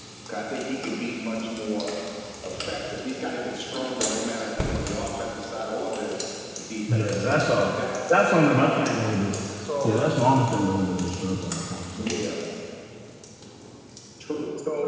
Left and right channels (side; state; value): both; identical; correlation 1.00